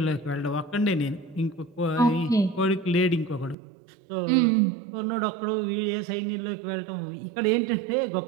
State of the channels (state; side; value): drops out; left; at 3.6 s